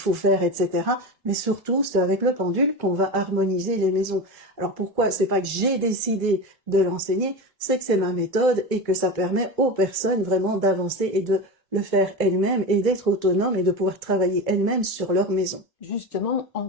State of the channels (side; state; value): both; normal; correlation 0.23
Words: faire, etc. Mais surtout, c'est avec le pendule qu'on va harmoniser les maisons. Alors pourquoi? C'est pas que j'ai décidé de l'enseigner, c'est que c'est ma méthode et que ça permet aux personnes vraiment d'avancer et de le faire elles-mêmes et d'être autonomes et de pouvoir travailler elles-mêmes sur leur maison. Justement, en